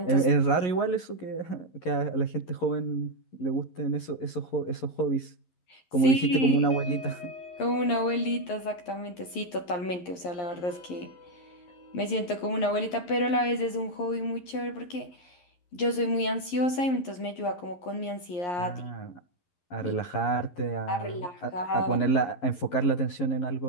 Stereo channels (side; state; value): right; late; 11 ms